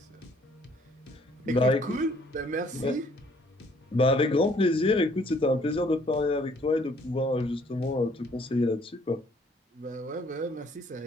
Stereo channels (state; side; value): normal; both; correlation 0.62